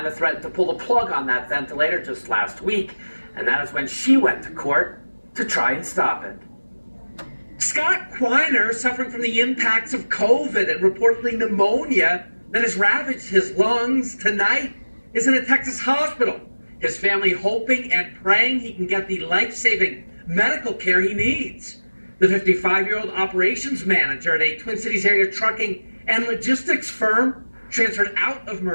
threatened to pull the plug on that ventilator just last week, and that is when she went to court to try and stop it. Scott Quiner, suffering from the impacts of COVID and reportedly pneumonia that has ravaged his lungs tonight, is in a Texas hospital. His family hoping and praying he can get the life-saving medical care he needs. The 55-year-old operations manager at a Twin Cities area trucking and logistics firm transferred out of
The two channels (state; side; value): inverted; both; correlation -1.00